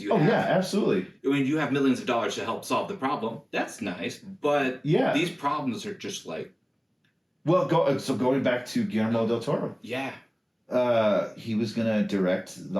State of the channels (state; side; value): identical; both; correlation 1.00